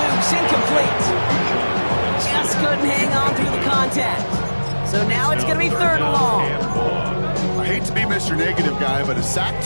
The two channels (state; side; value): inverted; both; correlation -1.00